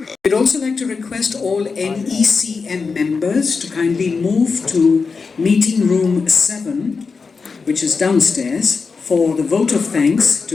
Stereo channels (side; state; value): right; quieter; 4.8 dB